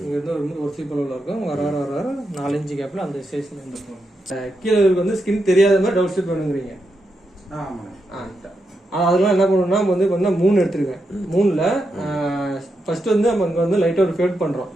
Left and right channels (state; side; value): normal; both; correlation 0.85